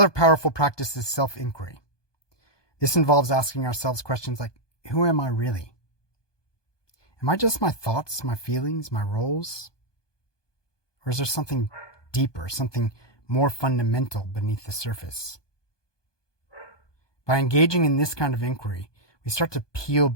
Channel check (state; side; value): late; right; 1.2 ms